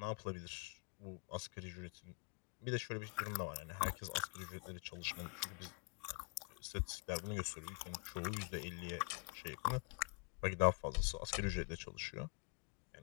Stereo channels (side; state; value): right; quieter; 33.2 dB